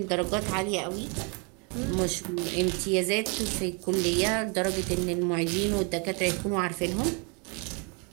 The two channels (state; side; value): quieter; left; 34.8 dB